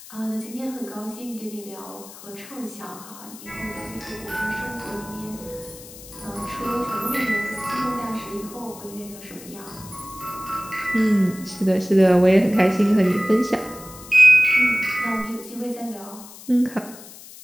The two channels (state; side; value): noise; left; hiss, 17 dB below the sound